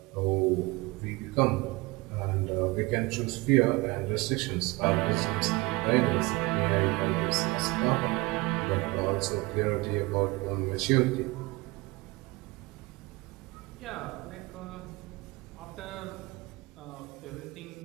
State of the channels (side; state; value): left; quieter; 23.5 dB